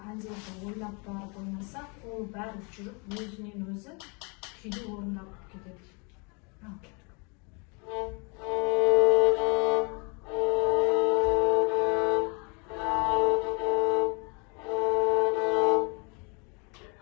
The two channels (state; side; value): quieter; right; 32.8 dB